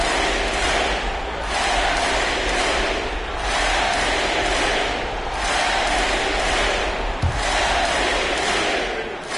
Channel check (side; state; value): both; identical; correlation 1.00